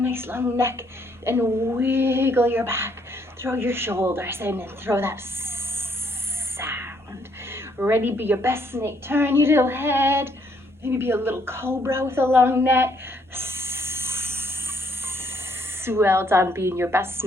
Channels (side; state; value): both; normal; correlation 0.69